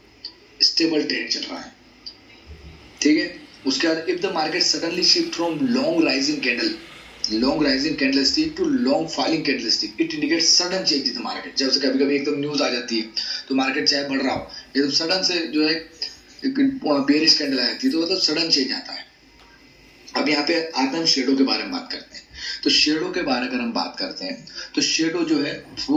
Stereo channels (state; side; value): identical; both; correlation 1.00